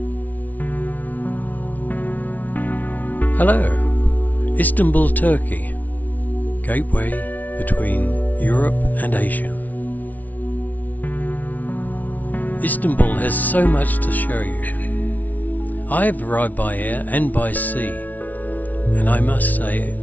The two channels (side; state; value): right; late; 0.076 ms